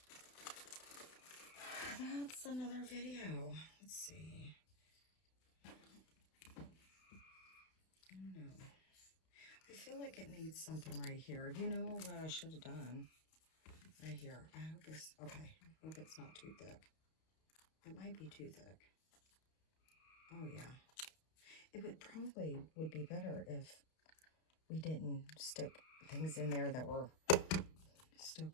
That's another video. Let's see. I don't know. I feel like it needs something right here. You know what I should have done? Right here. I hope it's, okay. I hope it's not too thick. It might be too thick. Oh, yeah. It would probably would be better if we didn't stick things in there that were still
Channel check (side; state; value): right; late; 32 ms